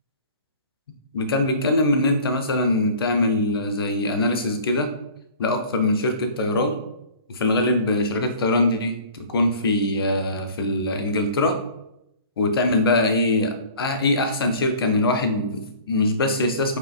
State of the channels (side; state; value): both; inverted; correlation -0.46